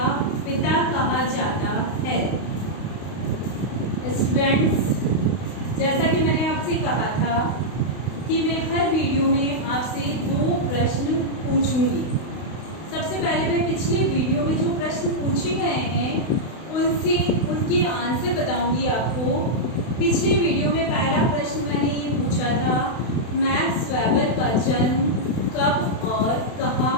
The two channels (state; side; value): late; right; 32 ms